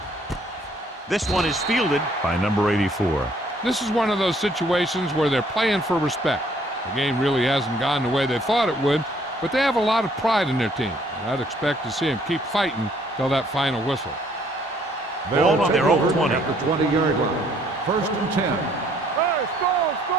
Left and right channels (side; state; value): both; normal; correlation 0.64